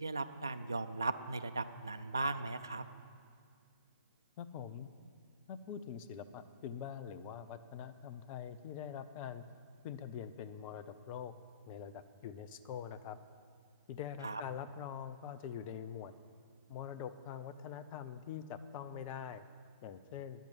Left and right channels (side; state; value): both; inverted; correlation -0.54